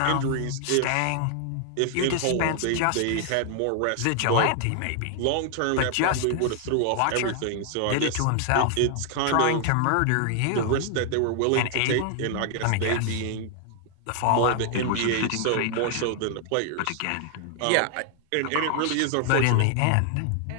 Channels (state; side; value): different; both; correlation 0.00